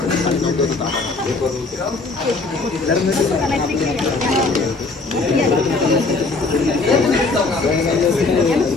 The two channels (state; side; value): quieter; right; 3.8 dB